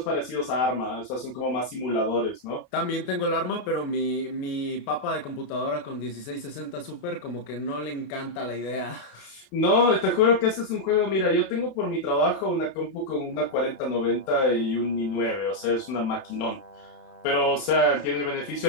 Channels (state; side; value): late; right; 29 ms